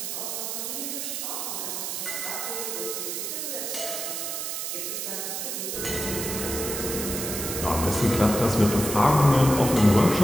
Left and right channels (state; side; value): noise; right; hiss, 4 dB below the sound